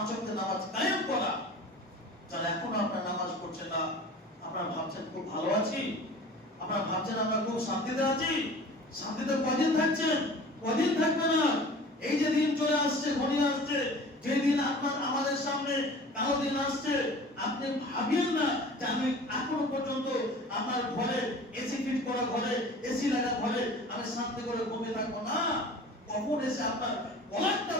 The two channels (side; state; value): both; normal; correlation 0.42